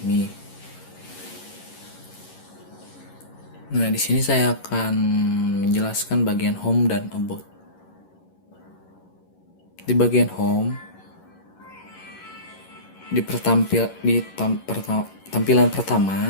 Nah, di sini saya akan menjelaskan bagian home dan about. Di bagian home, tampilan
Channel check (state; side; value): late; right; 11 ms